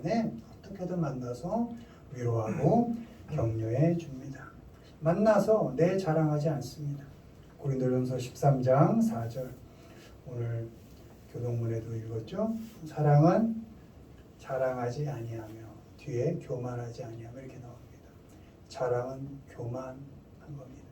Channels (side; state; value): both; identical; correlation 1.00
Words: 어떻게든 만나서 위로하고 격려해 줍니다. 만나서 내 자랑하지 않습니다. 고린도전서 13장 4절 오늘 교동문에도 읽었죠. 사랑은 자랑하지 아니하며 뒤에 교만하지 아니하며 이렇게 나옵니다. 자랑은 교만한 겁니다.